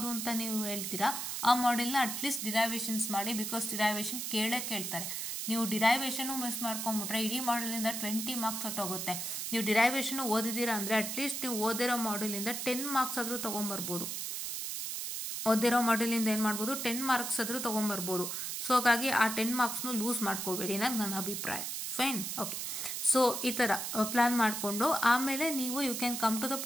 ಅಂತ ನೀವು ಹೇಳ್ತೀರಾ, ಆ ಮಾಡೆಲ್ನ ಅಟ್ಲೀಸ್ಟ್ ಡಿರೈವೇಷನ್ಸ್ ಮಾಡಿ. ಬಿಕಾಸ್ ಡಿರೈವೇಷನ್ ಕೇಳ್ತಾರೆ. ನೀವು ಡಿರೈವೇಷನು ಮಿಸ್ ಮಾಡ್ಕೊಂಬಿಟ್ರೆ ಇಡೀ ಮಾಡ್ಯೂಲಿಂದ 20 ಮಾರ್ಕ್ಸ್ ಹೊಟ್ಟೋಗುತ್ತೆ. ನೀವು ಡಿರೈವೇಷನು ಓದಿದ್ದೀರಾ ಅಂದರೆ ಅಟ್ಲೀಸ್ಟ್ ನೀವು ಓದಿರೋ ಮಾಡ್ಯೂಲಿಂದ 10 ಮಾರ್ಕ್ಸ್ ಆದರೂ ತೊಗೊಂಬರ್ಬೋದು. ಓದಿರೋ ಮಾಡ್ಯೂಲಿಂದ ಏನು ಮಾಡ್ಬೋದು, 10 ಮಾರ್ಕ್ಸ್ ಆದರೂ ತೊಗೊಂಬರ್ಬೋದು. ಸೊ ಹಾಗಾಗಿ ಆ 10 ಮಾರ್ಕ್ಸ್ನು ಲೂಸ್ ಮಾಡ್ಕೋಬೇಡಿ ಅನ್ನೋದು ನನ್ನ ಅಭಿಪ್ರಾಯ. Fine, okay. ಸೊ ಈ ಥರ ಪ್ಲ್ಯಾನ್ ಮಾಡಿಕೊಂಡು ಆಮೇಲೆ ನೀವು you can come to the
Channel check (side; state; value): right; noise; hiss, 4 dB below the sound